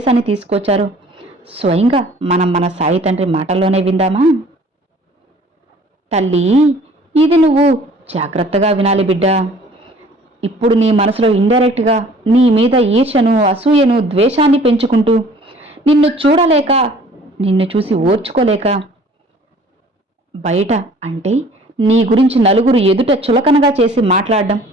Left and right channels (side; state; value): both; normal; correlation 0.52